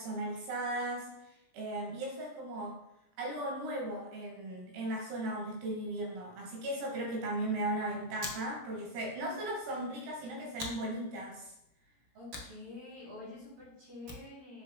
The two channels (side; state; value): left; late; 17 ms